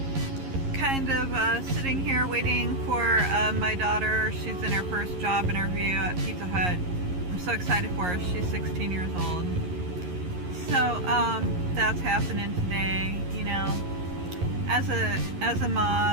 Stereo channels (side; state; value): left; late; 11 ms